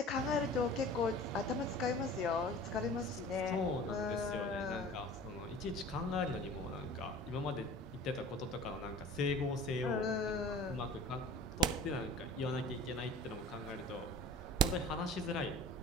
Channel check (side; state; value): both; normal; correlation 0.43